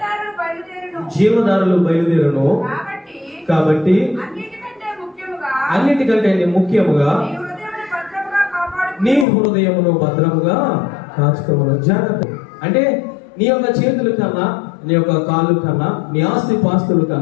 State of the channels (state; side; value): drops out; right; at 9.2 s